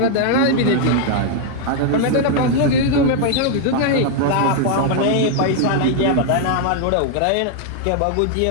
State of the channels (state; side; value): different; both; correlation 0.00